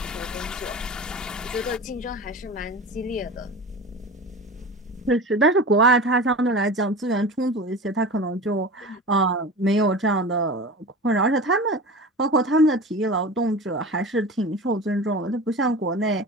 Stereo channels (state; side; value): normal; both; correlation 0.33